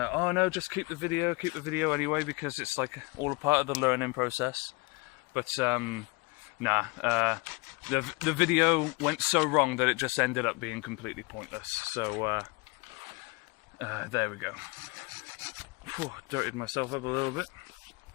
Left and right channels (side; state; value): right; quieter; 25.6 dB